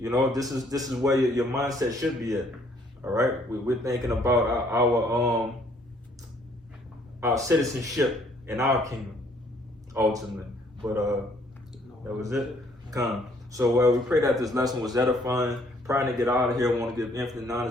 know, this is where your mindset should be at. All right, we're thinking about our citizenship in our kingdom, ultimately. But that was it. So we pray that this lesson was edifying. Trying to get out of here, I want to give infinite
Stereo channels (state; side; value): normal; both; correlation 0.64